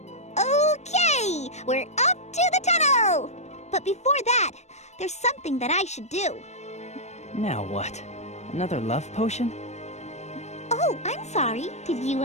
We're up to the tunnel! But before that, there's something that I should do. Now what? Another love potion? Oh, I'm sorry. Did you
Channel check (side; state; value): right; late; 0.32 ms